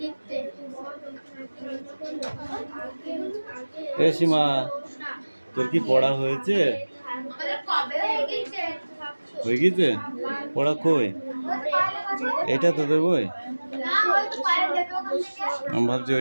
এ সীমা, তোর কি পড়া হয়েছে? হয়ে গেছে? পড়া কই? এটা তোদের বই? আমি ভাবছি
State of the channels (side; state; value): both; inverted; correlation -1.00